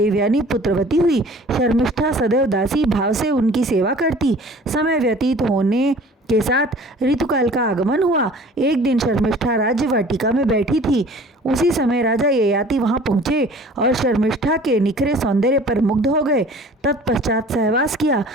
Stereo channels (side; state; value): both; normal; correlation 0.47